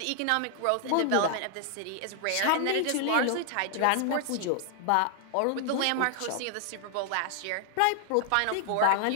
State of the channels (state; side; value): different; both; correlation 0.00